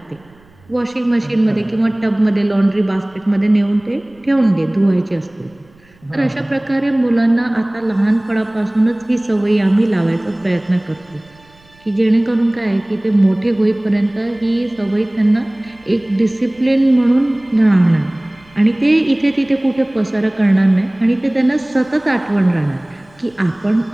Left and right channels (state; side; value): noise; right; rumble, 29 dB below the sound